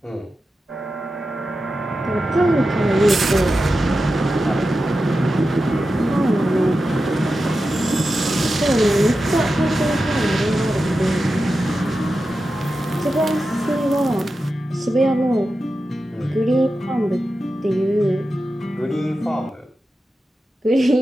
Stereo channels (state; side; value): normal; both; correlation 0.91